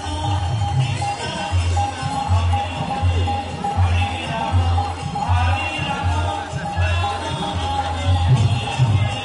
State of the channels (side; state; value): both; identical; correlation 1.00